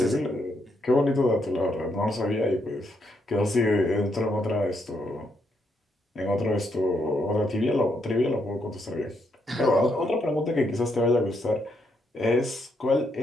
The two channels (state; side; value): normal; both; correlation 0.77